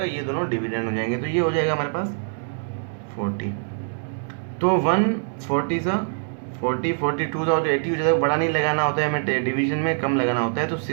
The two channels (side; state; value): left; silent; digital silence